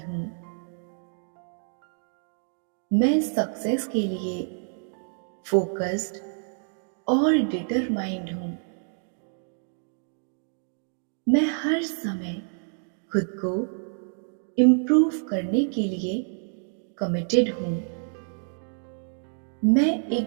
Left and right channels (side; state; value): left; silent; 60 dB below the other